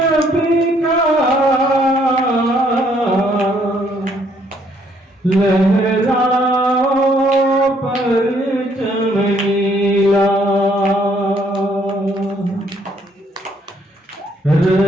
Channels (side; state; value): both; normal; correlation 0.67